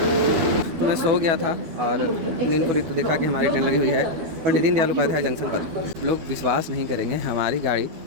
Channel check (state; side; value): late; left; 12 ms